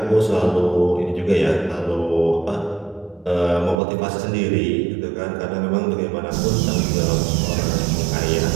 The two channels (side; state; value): left; drops out; at 3.8 s